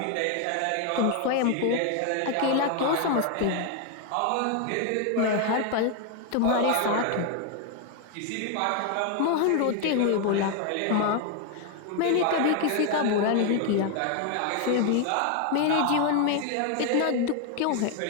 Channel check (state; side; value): different; both; correlation 0.01